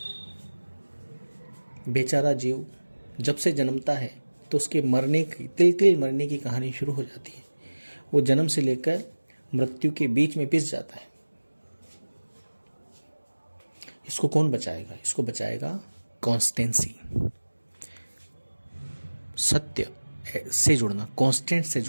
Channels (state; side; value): inverted; both; correlation -1.00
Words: बेचारा जीव जब से जन्मता है तो उसके मरने की, तिल तिल मरने की कहानी शुरू हो जाती है। वो जन्म से लेकर मृत्यु के बीच में पिस जाता है। इसको कौन बचाएगा? इसको बचाएगा कॉन्स्टेंसी, सत्य से जुड़ना, कांस्टेंट से